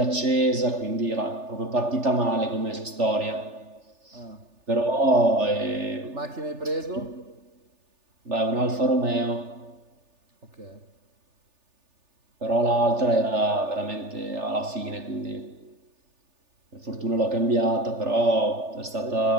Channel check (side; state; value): left; late; 3.4 ms